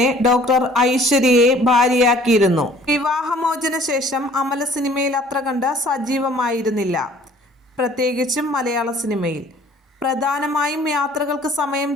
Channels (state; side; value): normal; both; correlation 0.54